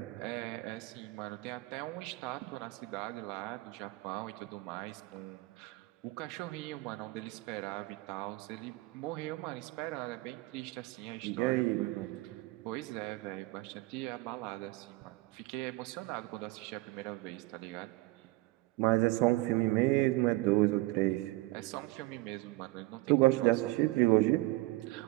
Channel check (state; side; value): quieter; left; 20.9 dB